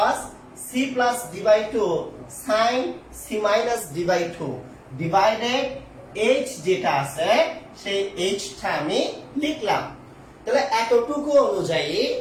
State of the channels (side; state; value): both; identical; correlation 1.00